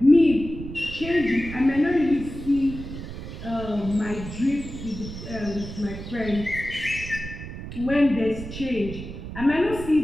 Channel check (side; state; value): right; noise; rumble, 10 dB below the sound